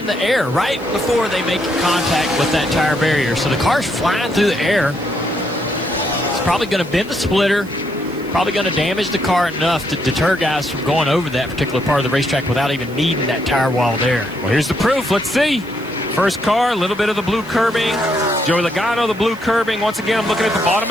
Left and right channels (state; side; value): noise; right; hiss, 24 dB below the sound